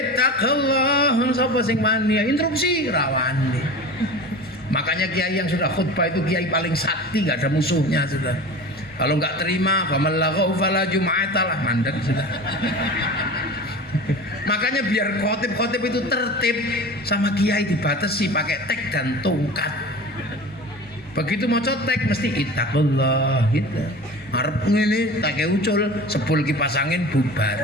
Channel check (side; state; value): both; normal; correlation 0.35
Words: sapa sing mani interupsi rawani. Makanya kiai yang sudah khutbah itu kiai paling sakti, nggak ada musuhnya sudah. Kalau nggak terima, famal laghaw fala jum'atalah, mandek sudah. Makanya biar khotib itu tertib, sama kiai dibatasi pakai tek dan tongkat. Begitu mau cotek mesti ittaqullah gitu. Arep ngene tak ucul sebul kipas angin